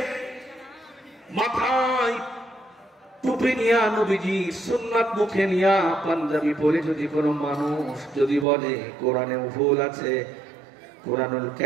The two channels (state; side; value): drops out; left; at 8.5 s